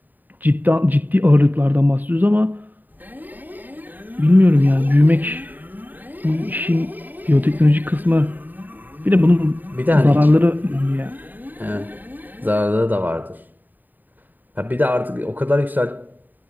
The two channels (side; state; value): left; late; 0.088 ms